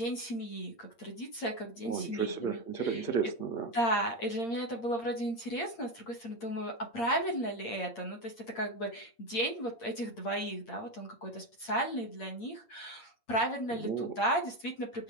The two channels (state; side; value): late; right; 8.7 ms